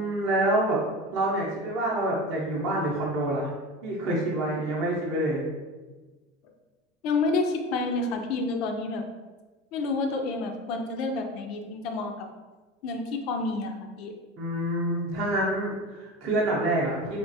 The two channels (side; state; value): both; normal; correlation 0.31